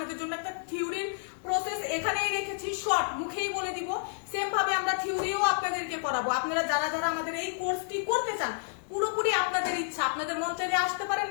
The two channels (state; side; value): silent; right; digital silence